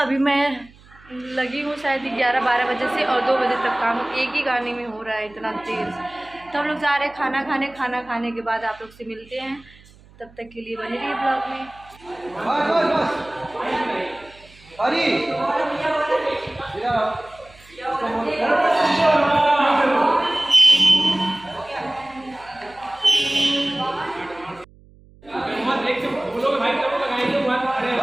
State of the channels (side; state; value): right; noise; hum, 25 dB below the sound